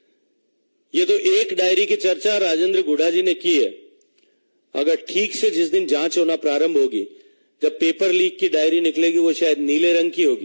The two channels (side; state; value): both; inverted; correlation -1.00